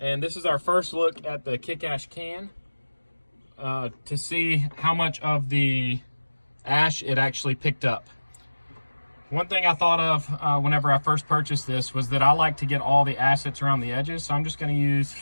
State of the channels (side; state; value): both; inverted; correlation -1.00